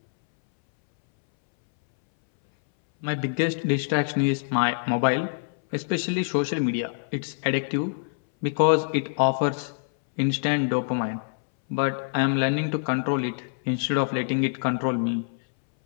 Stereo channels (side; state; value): right; silent; 62 dB below the other